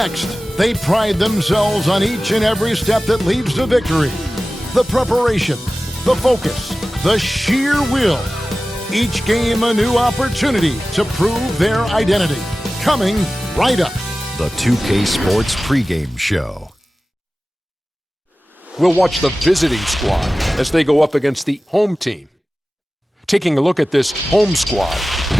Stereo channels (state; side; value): normal; both; correlation 0.96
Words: they pride themselves on each and every step that leads to victory. The preparation, the focus, the sheer will. Each game a new opportunity to prove their identity. Coming right up. The 2K Sports pregame show. We'll watch the visiting squad as they go up against the home team. Taking a look at this home squad,